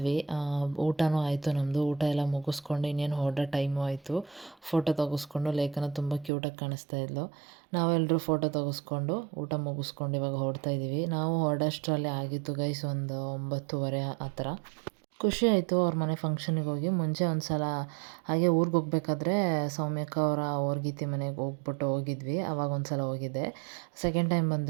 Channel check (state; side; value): drops out; left; at 6.3 s